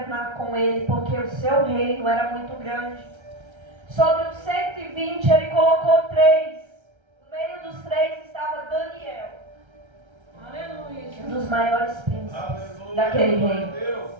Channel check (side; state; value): left; late; 1.3 ms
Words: com ele, porque o seu reino era muito grande. Sobre os 120 ele colocou 3. No meio dos 3 estava Daniel. Um dos maiores príncipes Aleluia. daquele Glória a reino. Deus.